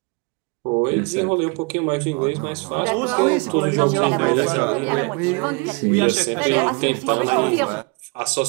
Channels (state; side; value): quieter; left; 30.9 dB